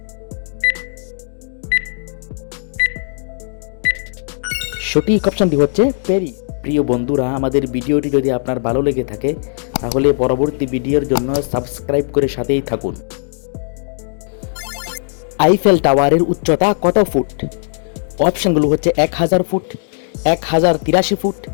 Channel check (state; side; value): silent; right; 67 dB below the other